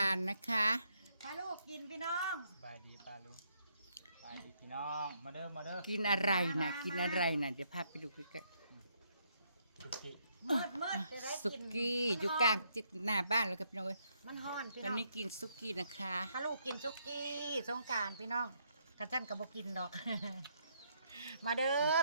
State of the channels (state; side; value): inverted; both; correlation -0.74